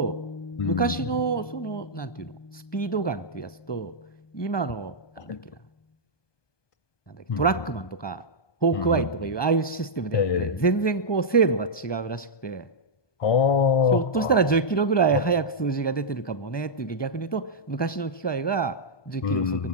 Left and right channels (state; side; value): late; right; 1.2 ms